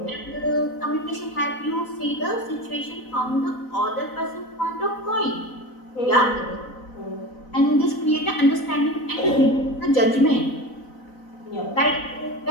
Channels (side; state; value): right; late; 4.0 ms